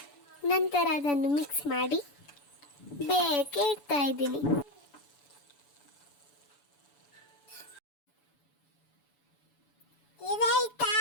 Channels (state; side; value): late; right; 7.0 ms